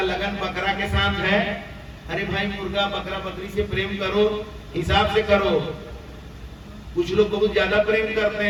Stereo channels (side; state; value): both; identical; correlation 1.00